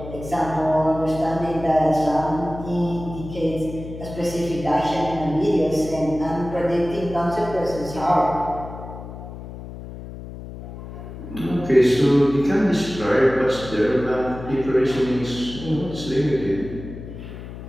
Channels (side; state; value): left; noise; hum, 12 dB below the sound